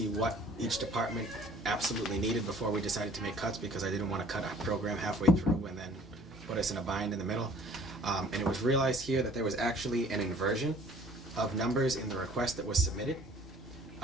what each department absolutely needed before we decided to make cuts, because I didn't want to cut a program halfway through and then put us in a bind in the middle. And it was realized here that there was actually an inversion of numbers in the request that was submitted.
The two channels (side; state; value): both; normal; correlation 0.53